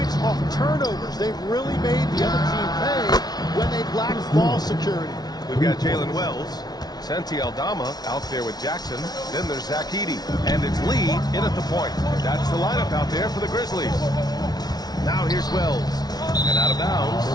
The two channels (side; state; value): right; late; 0.19 ms